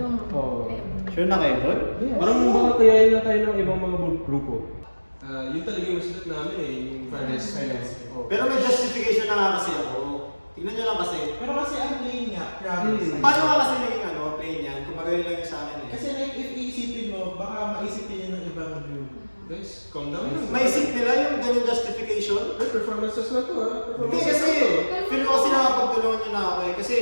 Oo. Sure na kayo doon? Yes. Parang baka kayain na tayo ng ibang mga grupo. Yun talaga yung masulat namin eh, yung fire rescue. Pero may justification na nga kasi ako. Tignan nyo lang kasi. Pero kasi ang plain nga, promise. Paano nga kasi naging plain yan? Kung magaling lang yun sa akin eh. Kasi like, if iisipin mo, baka maisipin yun ng ibang group. Guys, calm down lang. Maisip nila yung ganyung justification? Ay, performances na to ha. Hindi kasi, feel ko kasi nakapagtulungan nyo na ako eh. Kasi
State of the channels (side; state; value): both; inverted; correlation -1.00